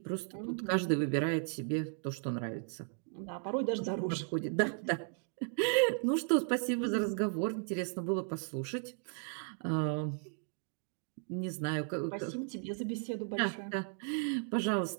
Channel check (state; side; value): silent; left; 54 dB below the other